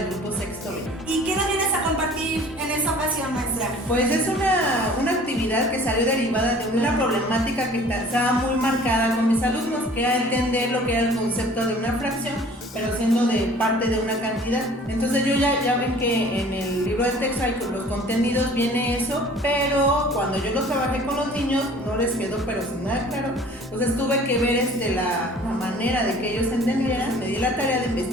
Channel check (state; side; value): normal; both; correlation 0.49